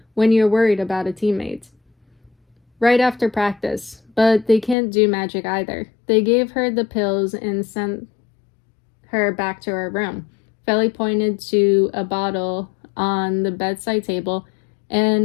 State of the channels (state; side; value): drops out; right; at 4.8 s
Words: when you're worried about a teammate. Right after practice, but they can't do magic either. They gave her the pills and sent her back to her room. Feli pointed to a bottle on the bedside table,